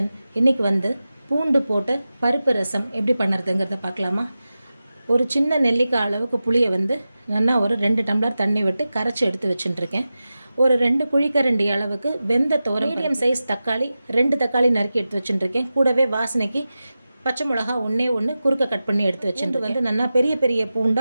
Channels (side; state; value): both; inverted; correlation -0.94